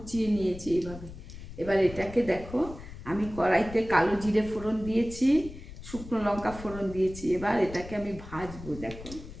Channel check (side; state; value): left; noise; rumble, 13 dB below the sound